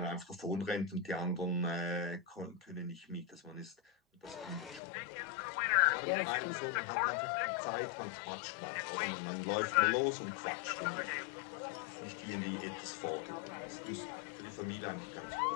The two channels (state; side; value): drops out; right; at 4.8 s